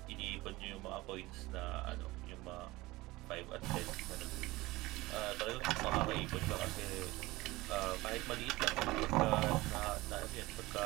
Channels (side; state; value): left; quieter; 19.9 dB